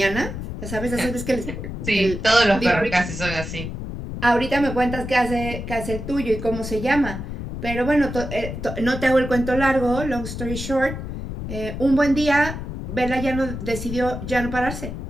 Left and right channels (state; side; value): noise; left; rumble, 7 dB below the sound